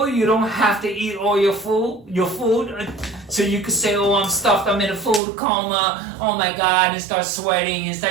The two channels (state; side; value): drops out; left; at 5.2 s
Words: you don't have to eat all your food. So you could say, oh, I'm stuffed, I'm in a food coma. Oh my God, and start sweating.